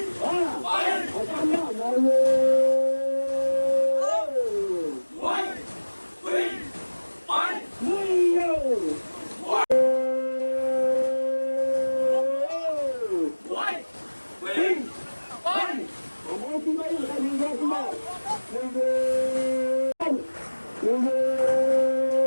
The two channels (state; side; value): inverted; both; correlation -1.00